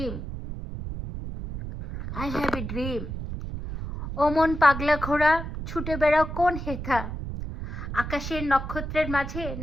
I have a dream. ও মন পাগলা ঘোড়া, ছুটে বেড়াও কোন হেথা, আকাশের নক্ষত্রের মাঝে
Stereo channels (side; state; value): right; noise; rumble, 7 dB below the sound